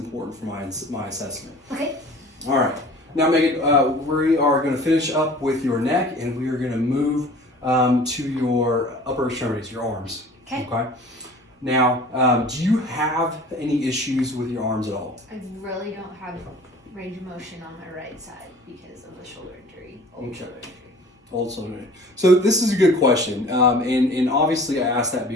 for my assessment. Okay. All right. Now, Megan, we are going to finish up with your neck, and we are going to move to your upper extremities, your arms. Okay. Okay. Now, do you have any issues with your arms at all? I really don't have range of motion on my right side because of the shoulder injury. Old shoulder injury. Old shoulder injury. So this is a good question, and obviously I asked that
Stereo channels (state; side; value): normal; both; correlation 0.45